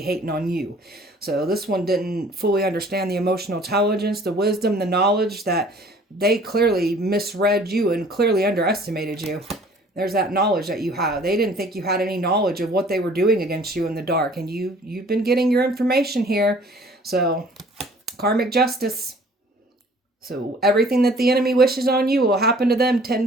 hating on you. So this one didn't fully understand the emotional intelligence, the wisdom, the knowledge, that they clearly misread you and clearly underestimated you. There's that knowledge that you have. They didn't think you had any knowledge of what they were doing against you in the dark, and you've been getting your information here. So karmic justice. So everything that the enemy wishes on you will happen to them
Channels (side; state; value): both; normal; correlation 0.53